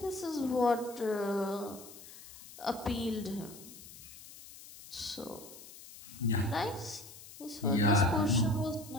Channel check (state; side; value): noise; left; hiss, 17 dB below the sound